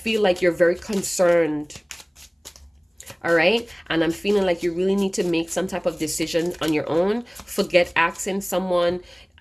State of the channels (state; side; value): identical; both; correlation 1.00